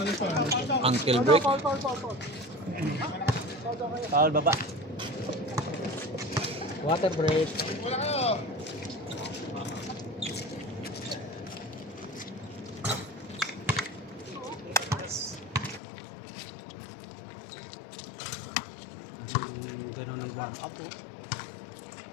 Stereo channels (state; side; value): drops out; right; at 15.8 s